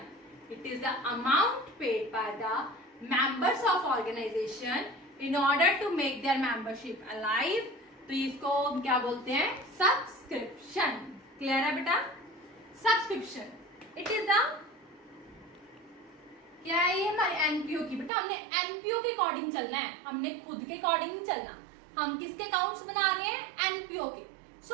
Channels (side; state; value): left; drops out; at 18.1 s